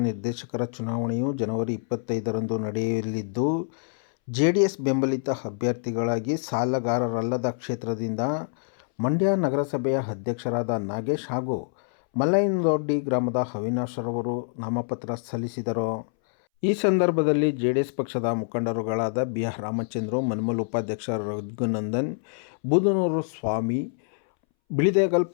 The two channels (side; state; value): right; silent; 61 dB below the other